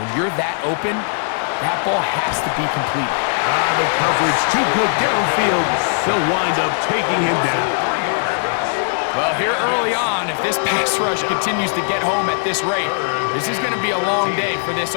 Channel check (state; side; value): silent; right; 67 dB below the other